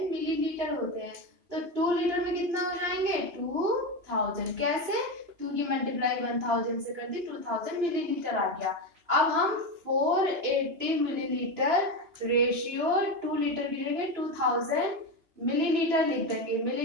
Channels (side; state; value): left; late; 3.0 ms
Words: मिलीलीटर होते हैं, तो 2 लीटर में कितना हो जाएंगे 2000। कैसे, 2 की मल्टीप्लाई 1000 से कर दी, 2000 मिलीलीटर आ गया। अब हम 480 मिलीलीटर रेशियो 2 लीटर की जगह 2000 मिलीलीटर लिख देंगे।